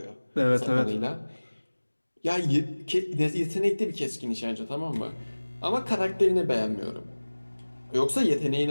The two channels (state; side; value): inverted; both; correlation -1.00